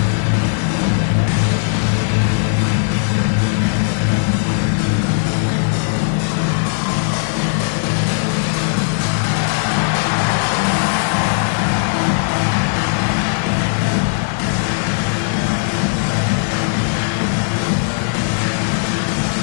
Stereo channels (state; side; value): silent; right; digital silence